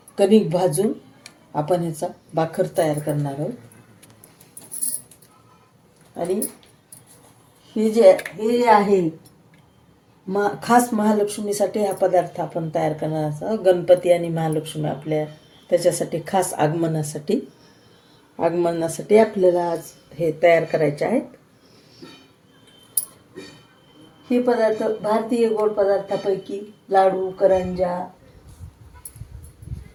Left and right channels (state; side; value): identical; both; correlation 1.00